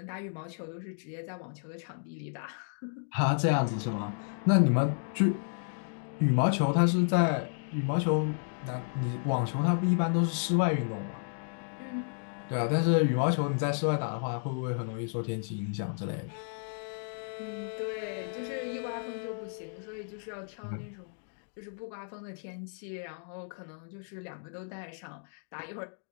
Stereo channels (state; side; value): silent; right; digital silence